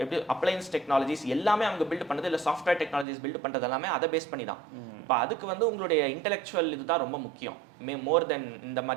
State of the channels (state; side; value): drops out; left; at 3.1 s